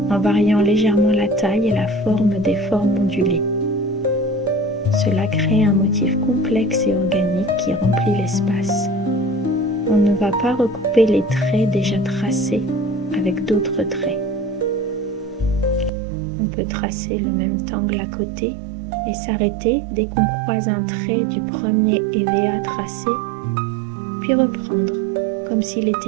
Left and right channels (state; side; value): drops out; left; at 15.9 s